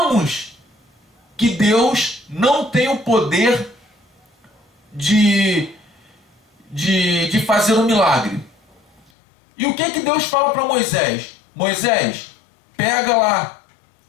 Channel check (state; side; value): drops out; right; at 9.1 s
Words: que Deus não tem o poder de fazer um milagre. E o que Deus fala para Moisés? Moisés, pega lá